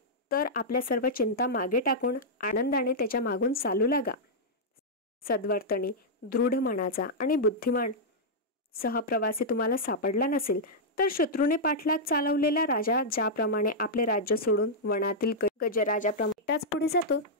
तर आपल्या सर्व चिंता मागे टाकून आनंदाने त्याच्या मागून चालू लागा. सद्वर्तनी, दृढ मनाचा आणि बुद्धिमान सहप्रवासी तुम्हाला सापडला नसेल तर शत्रूने पाठलाग चालवलेला राजा ज्याप्रमाणे आपले राज्य सोडून वनातील गजराजाप्रमाणे एकटाच पुढे जातो,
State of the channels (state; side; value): normal; both; correlation -0.07